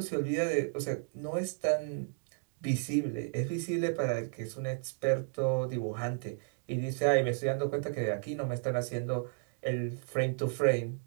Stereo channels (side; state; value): left; silent; digital silence